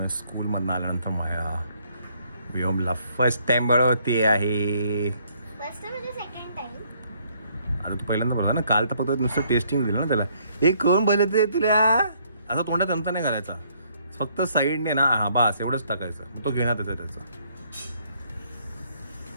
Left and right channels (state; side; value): inverted; both; correlation -0.67